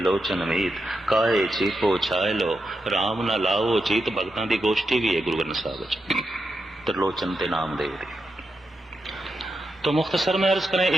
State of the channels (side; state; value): both; normal; correlation 0.86